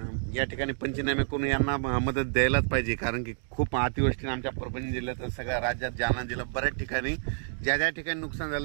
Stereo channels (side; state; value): left; silent; digital silence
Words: या ठिकाणी पंचनामे करून यांना मदत द्यायलाच पाहिजे, कारण की खूप अतिवृष्टीने आमच्या परभणी जिल्ह्यात सगळ्या राज्यात जालना जिल्हा बऱ्याच ठिकाणी ज्या ठिकाणी नुकसान